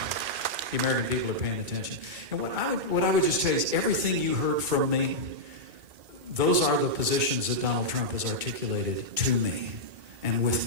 The American people are paying attention. And what I would just tell you is everything you heard from me, those are the positions that Donald Trump has articulated to me and with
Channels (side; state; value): left; late; 2.2 ms